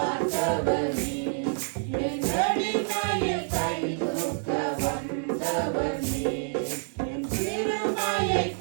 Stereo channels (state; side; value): silent; left; digital silence